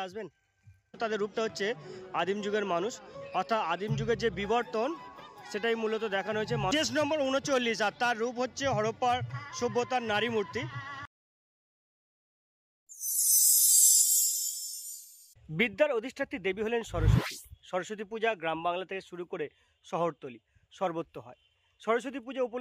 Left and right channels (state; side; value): identical; both; correlation 1.00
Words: আসবেন? তাদের রূপটা হচ্ছে আদিম যুগের মানুষ, অর্থাৎ আদিম যুগের যে বিবর্তন সেটাই মূলত দেখানো হয়েছে। কেস নম্বর 39 আর তার রূপ হচ্ছে হরপ্পার সভ্যতার নারী মূর্তি। বিদ্যার অধিষ্ঠাত্রী দেবী হলেন সরস্বতী। সরস্বতী পূজা গ্রাম বাংলা থেকে শুরু করে শহরতলি সর্বত্র হয়। সরস্বতী পূজা